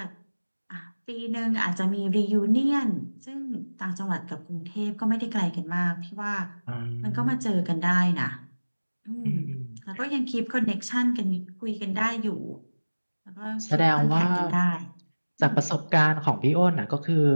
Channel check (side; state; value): both; inverted; correlation -1.00